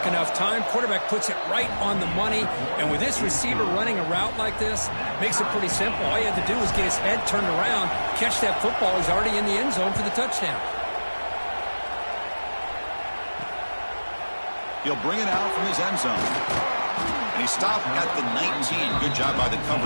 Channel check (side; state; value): both; inverted; correlation -1.00